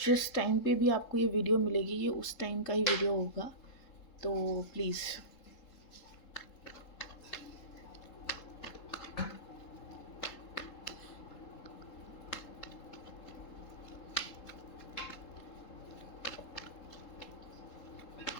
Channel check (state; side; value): late; right; 3.7 ms